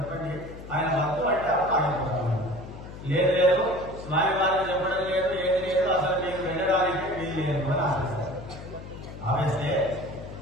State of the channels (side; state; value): left; noise; hum, 13 dB below the sound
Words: ఆయన వద్దు అంటే ఆగిపోతాము. లేదు లేదు, స్వామి వారికి చెప్పడం లేదు, ఏది లేదు, అసలు మీకు వెళ్ళడానికి వీలు లేదు అని ఆపేస్తారు. ఆపేస్తే